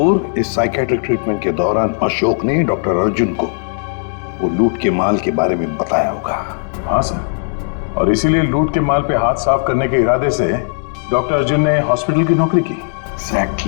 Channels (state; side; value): silent; right; digital silence